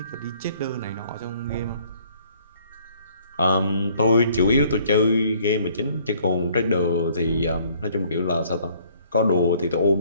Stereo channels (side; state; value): both; inverted; correlation -0.60